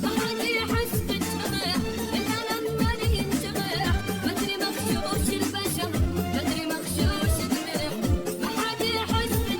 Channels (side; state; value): both; identical; correlation 1.00